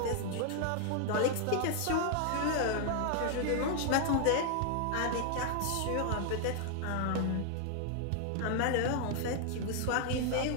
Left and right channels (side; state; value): both; different; correlation 0.00